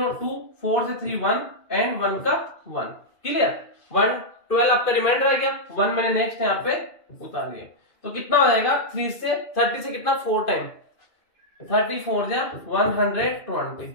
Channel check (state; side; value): late; right; 2.5 ms